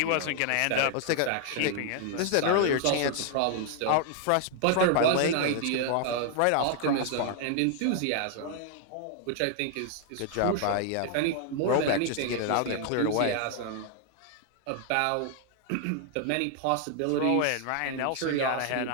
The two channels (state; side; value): different; both; correlation 0.00